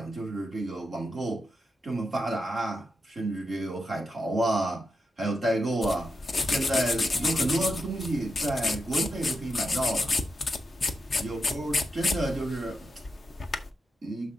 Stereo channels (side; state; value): both; normal; correlation 0.86